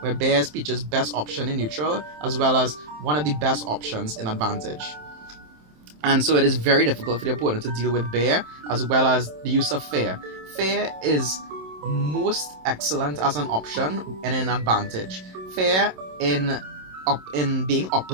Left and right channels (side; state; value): left; late; 27 ms